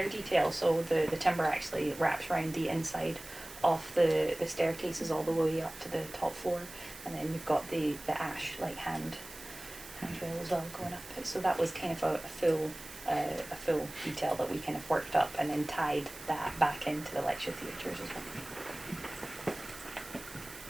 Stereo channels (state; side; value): noise; right; hiss, 16 dB below the sound